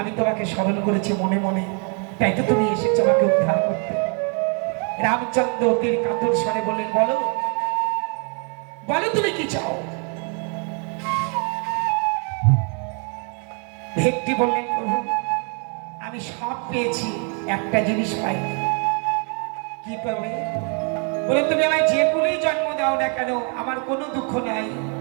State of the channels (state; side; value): quieter; left; 38.8 dB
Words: তোমাকে স্মরণ করেছি মনে মনে, তাই তো তুমি এসেছো আমাকে উদ্ধার করতে। রামচন্দ্র অতির কাতর স্বরে বললেন, বলো বলো তুমি কি চাও? ভেগটি বললেন, প্রভু আমি সব পেয়েছি, একটা জিনিস পাইনি। কি পাবে? বলে, তুমি আমায় যে কুলেই জন্ম দাও না কেন আমার কোনো দুঃখ নাই,